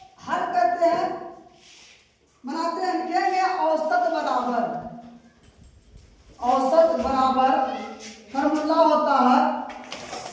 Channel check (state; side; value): identical; both; correlation 1.00